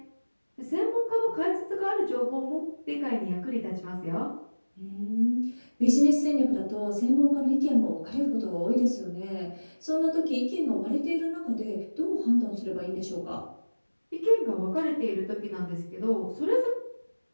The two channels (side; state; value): both; inverted; correlation -1.00